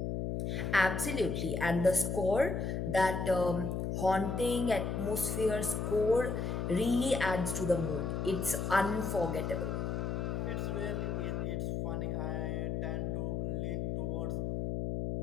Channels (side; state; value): left; noise; hum, 1 dB below the sound